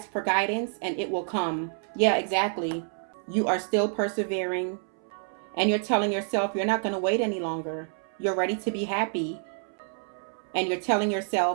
for guidance and it will come. Yeah, exactly. You are still persevering. And you're telling yourself you're not going to wait any longer. You're ready to be happy. And you're telling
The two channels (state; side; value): silent; left; 59 dB below the other